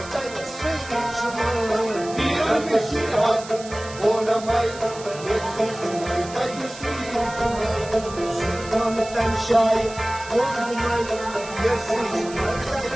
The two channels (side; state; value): right; noise; hiss, 15 dB below the sound